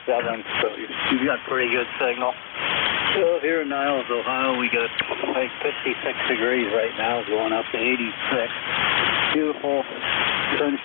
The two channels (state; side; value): quieter; right; 28.5 dB